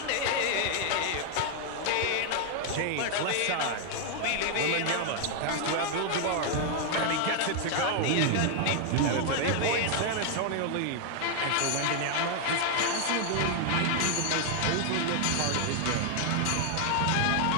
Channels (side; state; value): both; different; correlation 0.00